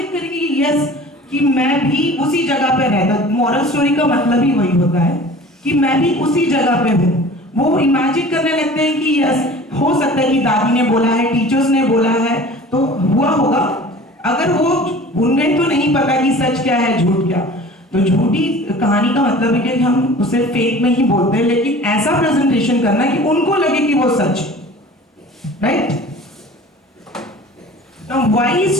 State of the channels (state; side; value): normal; both; correlation 0.43